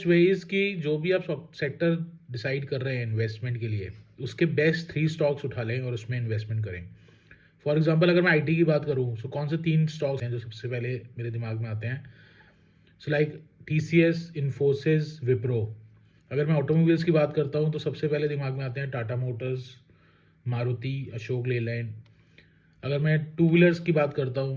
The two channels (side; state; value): both; identical; correlation 1.00